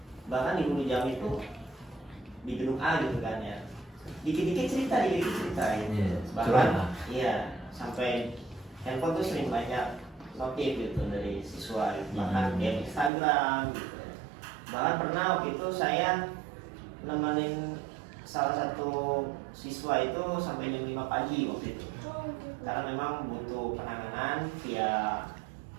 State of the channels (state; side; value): drops out; left; at 13.1 s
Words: Bahkan di guru jam itu di gedung A gitu kan ya, dikit-dikit cerita gitu. Bahkan iya sampai handphone tuh sering banyak notif gitu dari siswa gitu. Bahkan di Instagram gitu. Bahkan pernah waktu itu saya nemenin salah satu siswa itu sampai jam 5 pagi waktu itu, karena memang butuh penanganan via